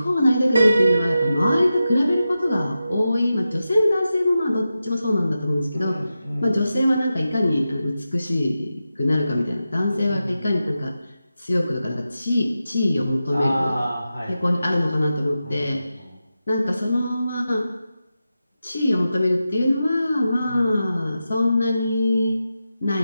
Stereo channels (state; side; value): inverted; both; correlation -0.91